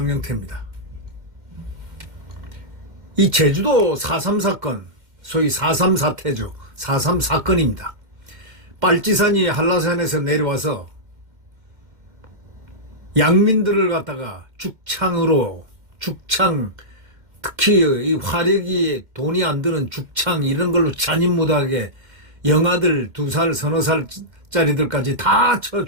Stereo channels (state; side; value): late; left; 2.1 ms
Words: 이 제주도 4.3 사건, 소위 4.3 사태죠. 4.3 사건입니다. 빨치산이 한라산에서 내려와서 양민들을 갖다가 죽창, 특히 이 화력이 돈이 안 드는 죽창 이런 걸로 잔인무도하게 영아들 2살, 서너 살짜리들까지 다 쳐